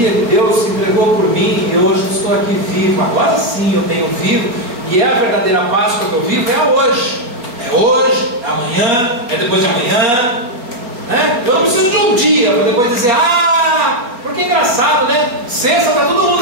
que Deus se entregou por mim e hoje estou aqui vivo. Agora sim eu tenho vivo. E é a verdadeira Páscoa que eu vivo, é a hoje. É hoje, é amanhã, é depois de amanhã. Né? Eu não preciso de um dia para depois dizer, porque é engraçado, né? Sexta está todo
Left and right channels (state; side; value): late; left; 4.2 ms